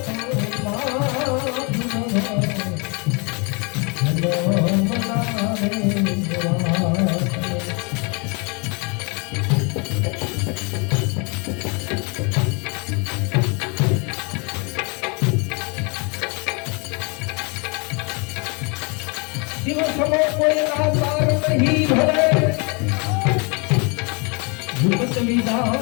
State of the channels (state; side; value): quieter; right; 32.2 dB